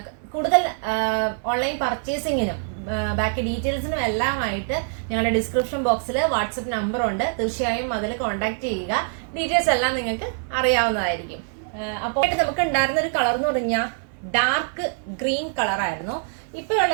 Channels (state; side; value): silent; left; digital silence